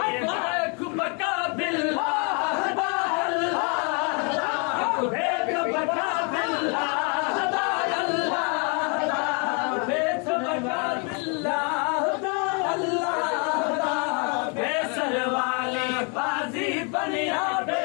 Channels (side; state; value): right; quieter; 35.4 dB